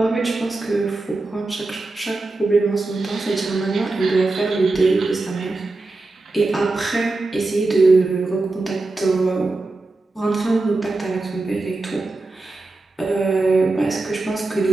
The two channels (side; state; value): left; quieter; 3.2 dB